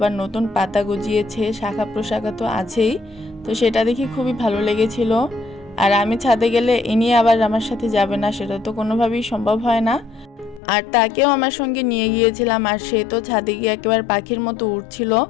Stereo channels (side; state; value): right; drops out; at 10.6 s